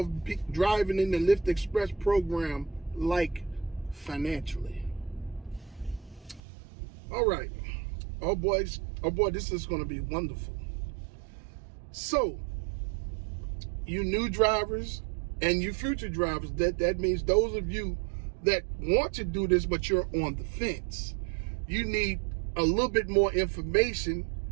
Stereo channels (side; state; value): left; drops out; at 6.4 s